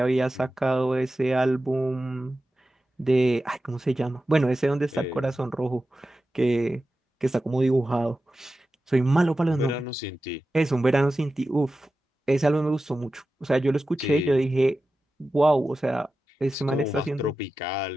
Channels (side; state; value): both; normal; correlation 0.93